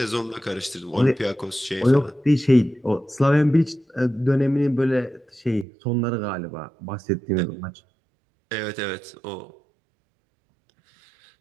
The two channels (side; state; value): left; drops out; at 5.7 s